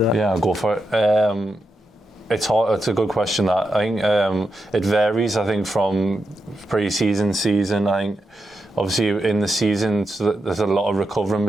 Yeah, I'll go for it. It's hard. It's a good question. That I think it varies. I think from pre-season, season. I think obviously in the season there's a lot of recovering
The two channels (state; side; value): normal; both; correlation 0.86